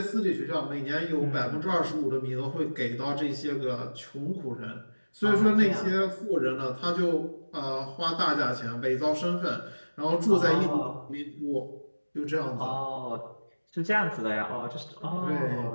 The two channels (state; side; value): inverted; both; correlation -1.00